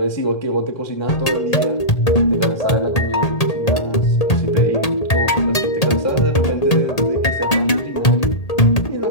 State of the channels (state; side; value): late; right; 1.8 ms